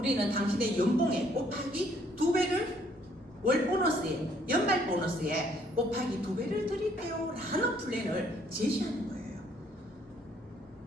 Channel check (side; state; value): both; normal; correlation 0.65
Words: 당신의 연봉에 곱하기 2배를 월 보너스에 연말 보너스에 곱하기 2배를 드릴게요 라는 플랜을 제시하는 거예요.